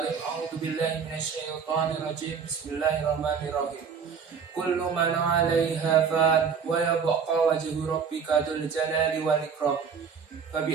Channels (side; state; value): left; quieter; 6.4 dB